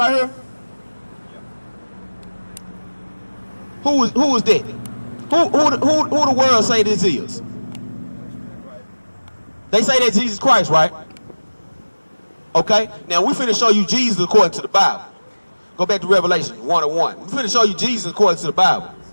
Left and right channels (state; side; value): inverted; both; correlation -1.00